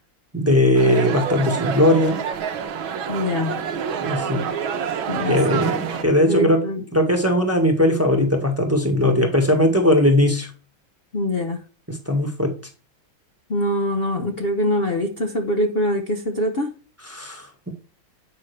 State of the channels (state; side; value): normal; both; correlation 0.03